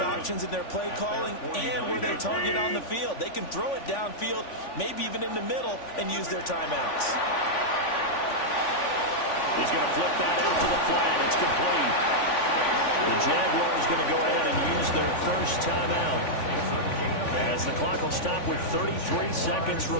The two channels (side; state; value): right; late; 3.5 ms